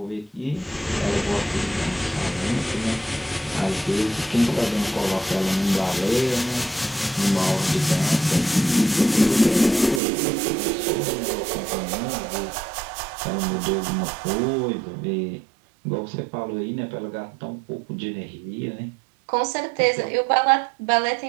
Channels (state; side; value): drops out; left; at 10.0 s